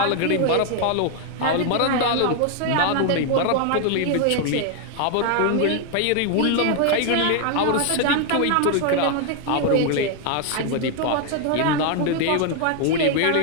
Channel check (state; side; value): different; both; correlation 0.00